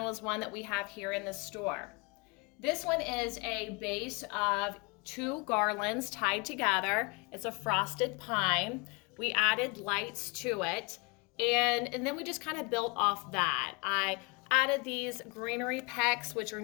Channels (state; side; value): quieter; right; 28.9 dB